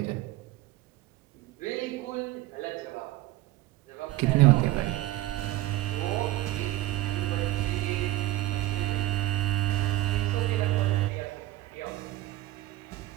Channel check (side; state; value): left; quieter; 16.2 dB